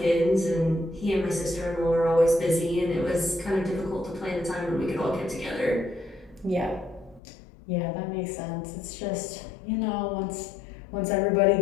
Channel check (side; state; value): right; drops out; at 7.2 s